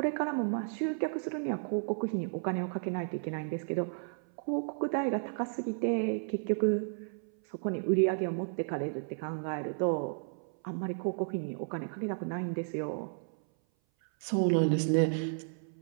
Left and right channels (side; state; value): left; silent; 56 dB below the other